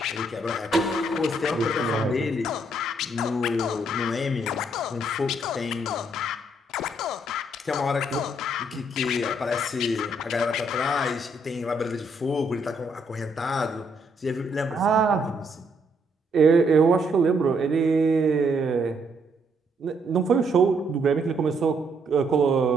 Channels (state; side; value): normal; both; correlation 0.72